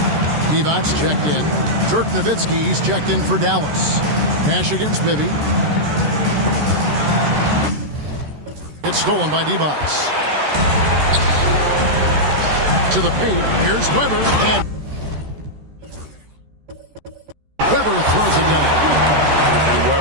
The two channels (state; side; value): late; left; 13 ms